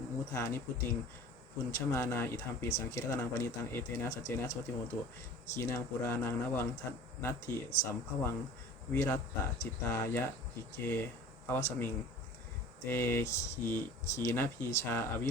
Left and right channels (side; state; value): both; normal; correlation 0.43